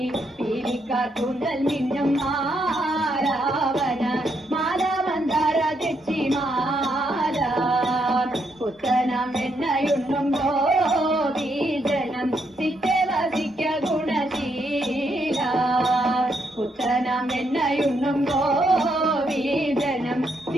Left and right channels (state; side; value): normal; both; correlation 0.77